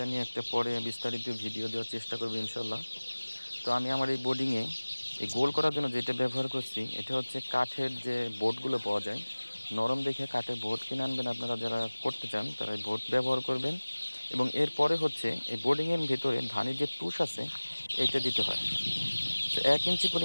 নিয়ে একটা পরে বিস্তারিত ভিডিও দেওয়ার চেষ্টা করব ইনশাল্লাহ। তো আমি আমার এই বোর্ডিংয়ে এই গোল করার জন্য যেটা ব্যবহার করছি, এটা হচ্ছে কাঠের যে বোর্ডগুলো পাওয়া যায়। নরম দেখে কাঠের বোর্ড কিনে আনবেন, আপনারা যারা করতে চান তারা এই বোর্ড ব্যবহার করবেন। এবং এরপরে হচ্ছে এই বোর্ডিংয়ের ভিতরে ধানের যে তুষ আছে এইটা দিতে হয়। তো 1 ইঞ্চি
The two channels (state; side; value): inverted; both; correlation -1.00